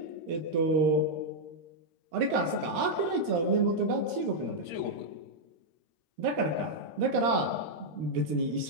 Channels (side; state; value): left; late; 13 ms